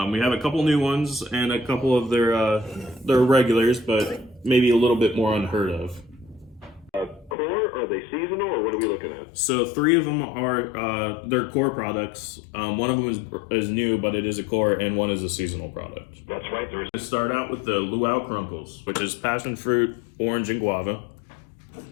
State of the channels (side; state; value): right; drops out; at 7.4 s